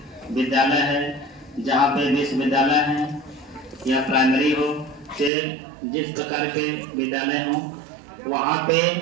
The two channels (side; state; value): left; drops out; at 5.3 s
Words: विद्यालय है, जहाँ पे विश्वविद्यालय है या प्राइमरी हो, से जिस प्रकार के विद्यालय हों, वहाँ पे